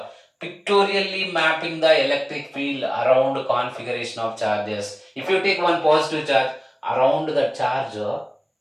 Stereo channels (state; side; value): identical; both; correlation 1.00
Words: pictorially mapping the electric field around configuration of charges. If you take one positive charge around the charge,